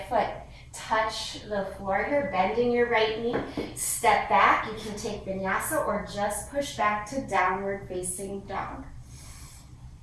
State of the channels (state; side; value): identical; both; correlation 1.00